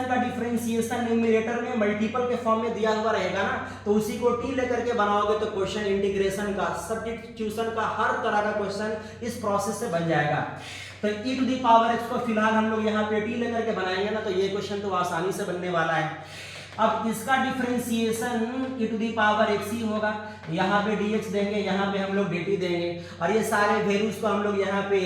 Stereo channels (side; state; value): both; identical; correlation 1.00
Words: का डिफरेंशिएशन न्यूमरेटर में मल्टीपल के फॉर्म में दिया हुआ रहेगा ना, तो उसी को t लेकर के बनाओगे तो क्वेश्चन इंटीग्रेशन का, सब्स्टिट्यूशन का, हर तरह का क्वेश्चन इस प्रोसेस से बन जाएगा। तो e to the power x को फिलहाल हम लोग यहाँ पे t लेकर के बनाएंगे ना, तो ये क्वेश्चन तो आसानी से बनने वाला है। अब इसका differentiation e to the power x ही होगा, यहाँ पे dx देंगे, यहाँ पे हम लोग dt देंगे, और ये सारे वैल्यूज को हम लोग यहाँ पे